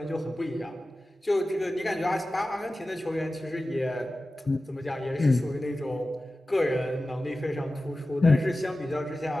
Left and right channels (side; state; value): both; normal; correlation 0.95